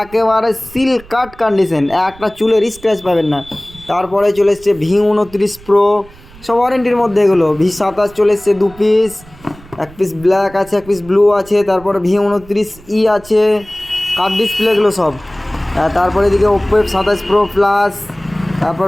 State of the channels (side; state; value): right; noise; rumble, 22 dB below the sound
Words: একেবারে সিল কাট কন্ডিশন, একটা চুলের স্ক্র্যাচ পাবেন না। তারপরে চলে এসছে V29 প্রো, সব ওয়ারেন্টির মধ্যে এগুলো। V27 চলে এসছে 2 পিস, 1 পিস ব্ল্যাক আছে, 1 পিস ব্লু আছে। তারপরে V29E আছে, কাট ডিসপ্লেগুলো সব। তারপরে এদিকে ওপ্পো F27 প্রো প্লাস,